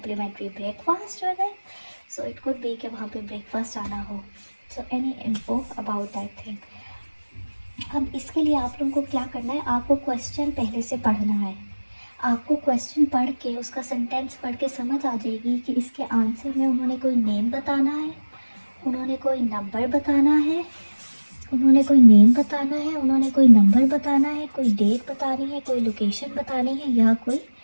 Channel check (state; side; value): inverted; both; correlation -1.00